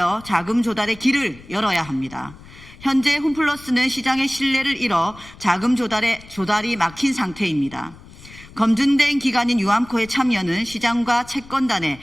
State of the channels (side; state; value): left; noise; rumble, 20 dB below the sound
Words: 자금 조달의 길을 열어야 합니다. 현재 홈플러스는 시장의 신뢰를 잃어 자금 조달이 막힌 상태입니다. 검증된 기관인 유암코의 참여는 시장과 채권단의